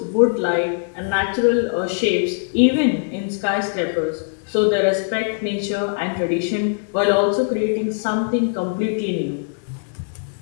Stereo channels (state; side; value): silent; right; digital silence